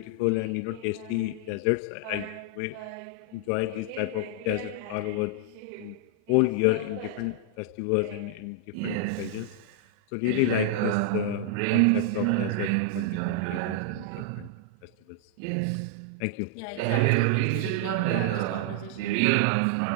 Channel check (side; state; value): both; different; correlation -0.01